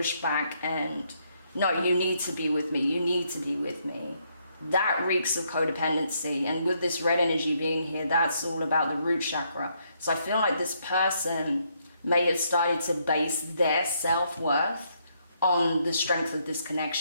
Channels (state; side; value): inverted; both; correlation -0.73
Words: and, no, you need to be with me, you need to be with me, that reeks of codependency. And with this red energy being here, that's all about the root chakra. So I feel like this person may have started to base their self-worth on the strength of this